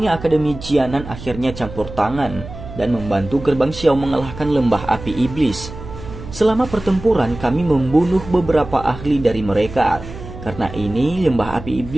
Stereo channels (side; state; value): right; noise; hum, 13 dB below the sound